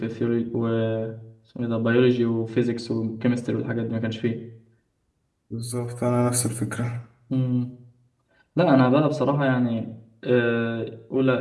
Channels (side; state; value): both; identical; correlation 1.00